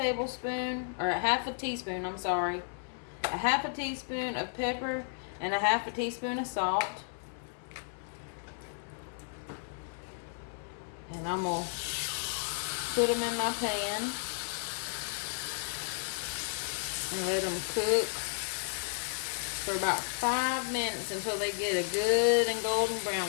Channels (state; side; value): silent; right; 56 dB below the other